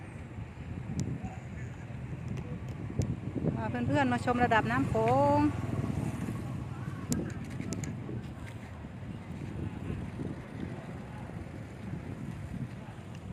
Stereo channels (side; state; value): both; identical; correlation 1.00